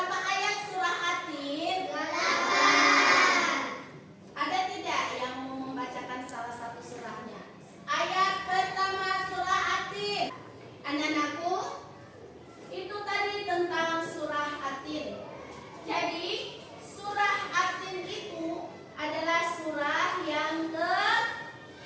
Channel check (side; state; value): both; identical; correlation 1.00